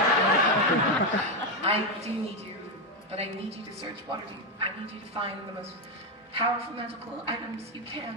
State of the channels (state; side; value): normal; both; correlation 0.07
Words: I do need you, but I need you to search Waterdeep. I need you to find the most powerful magical items you